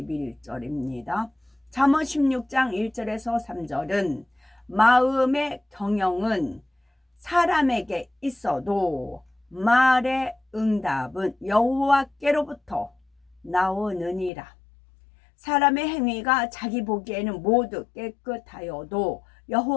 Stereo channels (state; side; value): drops out; right; at 14.3 s